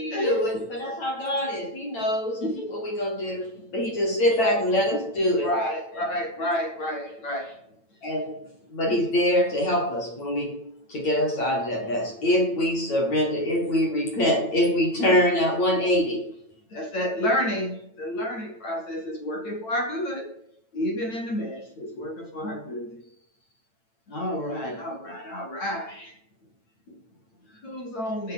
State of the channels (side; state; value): right; late; 8.9 ms